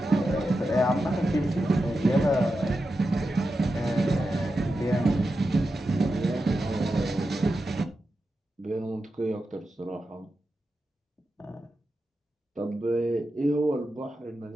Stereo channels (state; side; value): normal; both; correlation 0.90